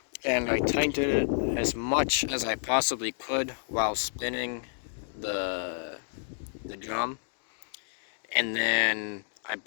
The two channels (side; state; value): right; silent; digital silence